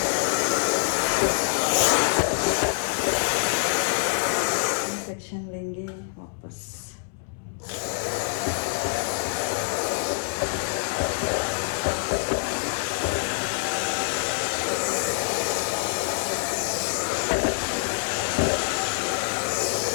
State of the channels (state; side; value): silent; right; 61 dB below the other